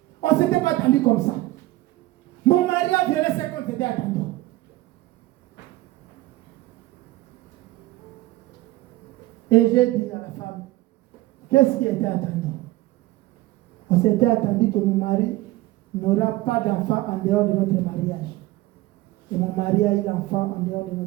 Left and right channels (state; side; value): quieter; left; 17.8 dB